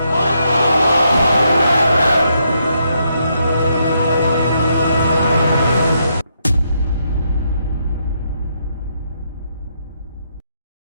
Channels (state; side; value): inverted; both; correlation -0.77